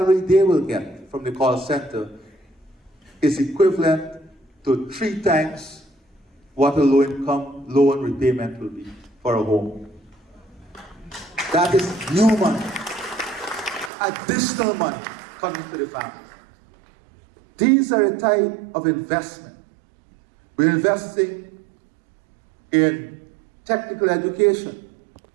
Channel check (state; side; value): drops out; left; at 13.9 s